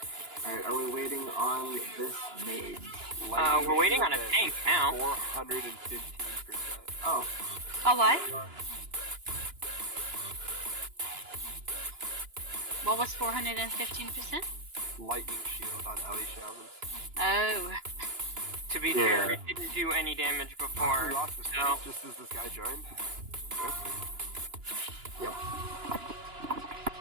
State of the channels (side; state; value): left; late; 2.9 ms